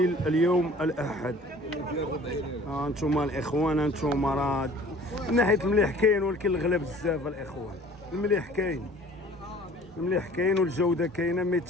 اليوم الاحد. انتم الاخوان انتم راه من ناحيه المليح كاين، ولكن الغلا بزاف الاخوان. المليح كاين، المليح كاين والجوده كاينه، مي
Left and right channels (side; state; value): both; normal; correlation 0.49